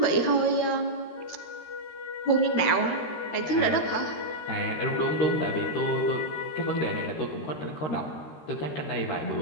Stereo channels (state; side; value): late; right; 13 ms